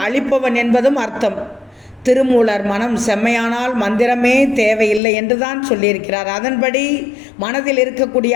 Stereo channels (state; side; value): drops out; right; at 5.0 s